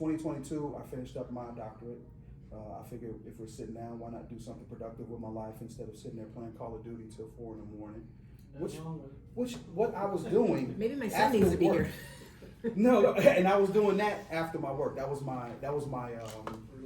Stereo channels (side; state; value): both; identical; correlation 1.00